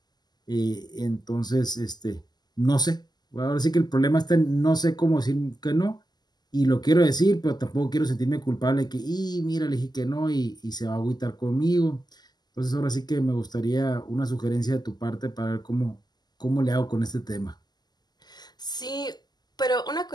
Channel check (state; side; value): late; right; 0.20 ms